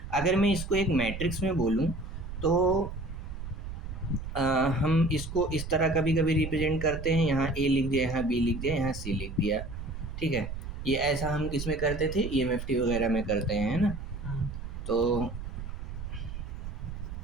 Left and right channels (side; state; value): right; noise; rumble, 8 dB below the sound